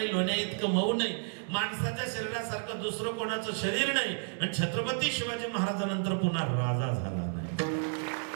लोण्या इतकं मऊ नाही, माणसाच्या शरीरासारखं दुसरं कोणाचं शरीर नाही, आणि छत्रपती शिवाजी महाराजांनंतर पुन्हा राजा झाला नाही.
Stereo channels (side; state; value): left; silent; 57 dB below the other